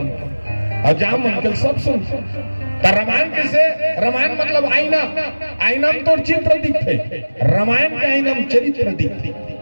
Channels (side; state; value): both; inverted; correlation -1.00